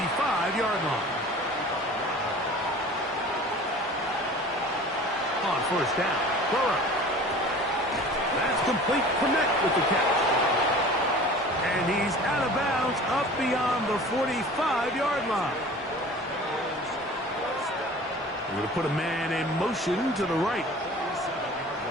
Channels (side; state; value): both; normal; correlation 0.42